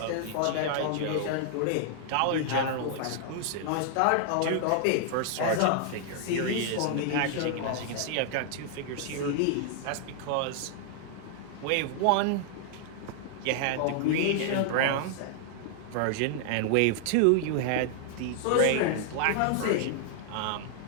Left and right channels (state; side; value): different; both; correlation -0.01